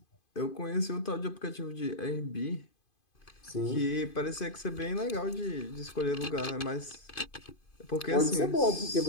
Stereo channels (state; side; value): late; right; 2.5 ms